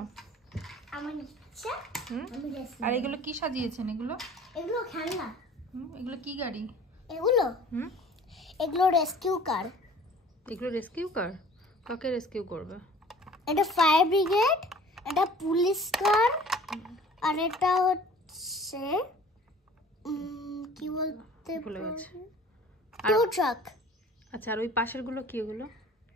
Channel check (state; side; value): normal; both; correlation 0.48